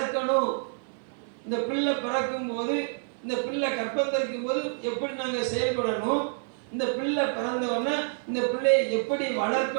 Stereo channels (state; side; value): silent; left; 59 dB below the other